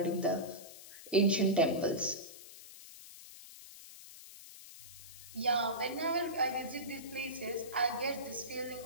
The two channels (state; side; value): noise; left; hiss, 16 dB below the sound